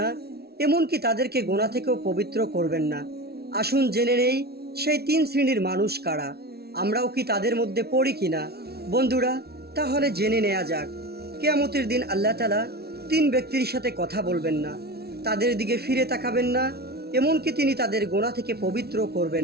এমনকি তাদেরকে গোনা থেকেও পবিত্র করবেন না। আসুন জেনে নেই সেই তিন শ্রেণীর মানুষ কারা। আমরাও কি তাদের মধ্যে পড়ি কিনা? বন্ধুরা, তাহলে জেনে নেওয়া যাক। কিয়ামতের দিন আল্লাহ তাআলা তিন ব্যক্তির সাথে কথা বলবেন না, তাদের দিকে ফিরে তাকাবেন না, এমনকি তিনি তাদের গোনা থেকে পবিত্র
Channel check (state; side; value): late; left; 0.46 ms